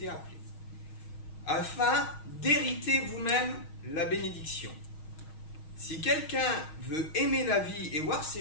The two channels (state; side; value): late; right; 6.4 ms